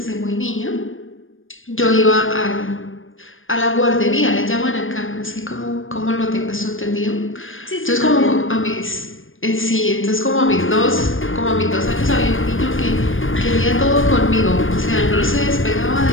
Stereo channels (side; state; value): right; late; 0.59 ms